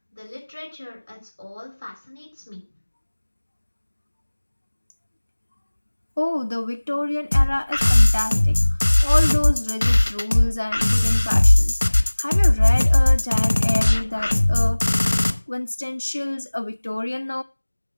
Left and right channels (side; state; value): both; inverted; correlation -1.00